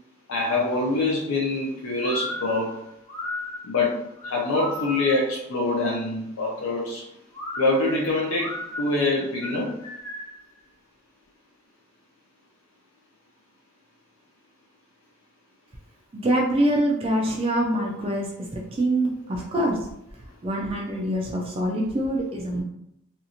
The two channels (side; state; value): both; normal; correlation 0.31